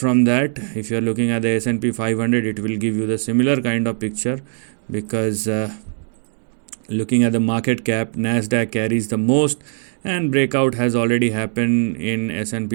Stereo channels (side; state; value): left; silent; digital silence